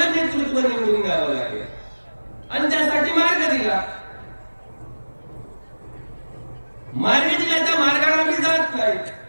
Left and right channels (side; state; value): both; inverted; correlation -1.00